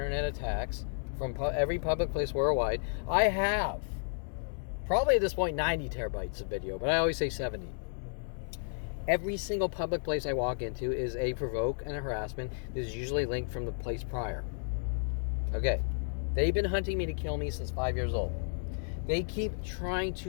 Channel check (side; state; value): right; silent; digital silence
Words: attacks from every public place worldwide. I have probably at this point 90 terabytes of video, but I always say 70. Every single public place I walk into is a provoke and a harassment that is usually linked from the place prior. Okay. They've been hunting me to kill me since 5 years old. They keep trying